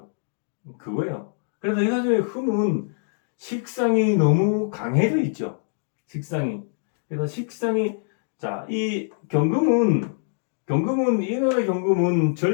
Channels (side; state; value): right; silent; digital silence